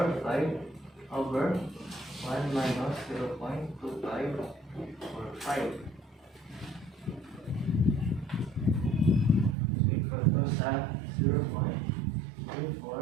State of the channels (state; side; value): drops out; left; at 9.6 s